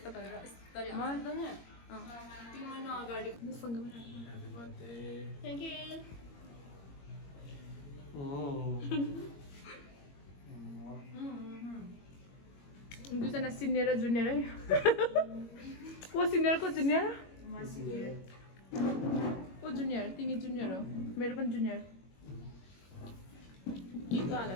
गरेर यस्तरी मलाई त नि 3 महिना अगाडि Happy birthday. थ्याङ्क यू दुईजना सिनियर र जुनियर है को सिनियर को जुनियर को जुनियर तिमी जुनियर हो मेरो पनि जुनियर के को हाल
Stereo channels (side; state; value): right; late; 21 ms